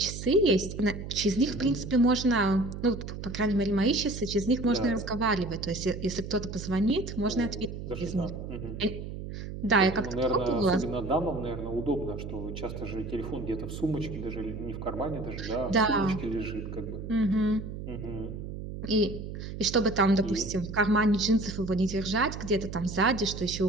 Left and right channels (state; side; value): noise; right; hum, 8 dB below the sound